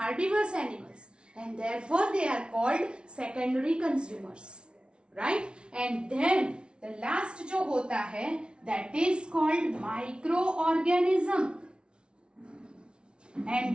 animals, and therefore they are called secondary consumers, right? And then the last जो होता है, that is called microorganism,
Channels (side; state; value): left; late; 0.057 ms